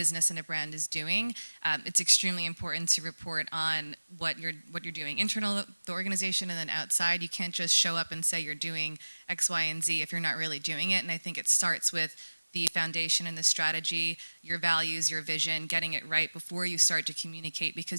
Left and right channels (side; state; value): both; inverted; correlation -1.00